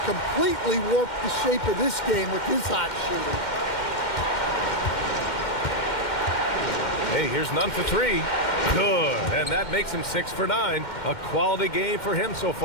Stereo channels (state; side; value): late; right; 2.1 ms